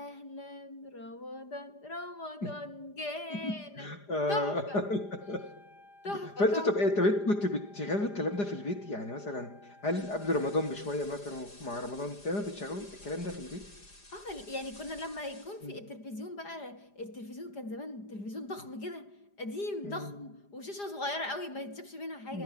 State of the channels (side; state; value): right; late; 4.9 ms